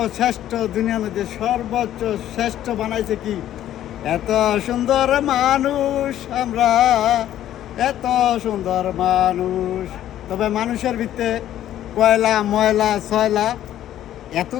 দুনিয়ার মধ্যে সর্বোচ্চ শ্রেষ্ঠ বানাইছে কি? এত সুন্দর মানুষ আমরা, এত সুন্দর মানুষ। তবে মানুষের ভিতরে কয়লা ময়লা ছয়লা এত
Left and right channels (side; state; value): right; quieter; 12.1 dB